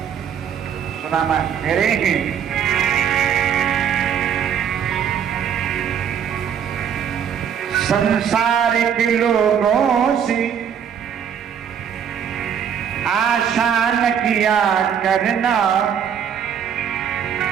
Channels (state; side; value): quieter; left; 8.2 dB